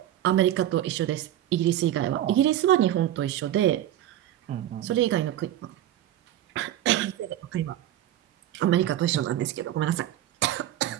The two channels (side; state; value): left; quieter; 12.5 dB